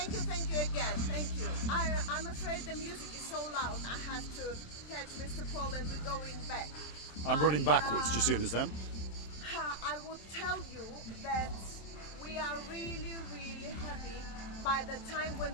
you again. Thank you. I'm afraid the music is so loud. I have to catch Mr. Paul, and we're going back. I'm running backwards, just so you understand. I would tell you that we are really, really happy by the time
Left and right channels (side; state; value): right; late; 26 ms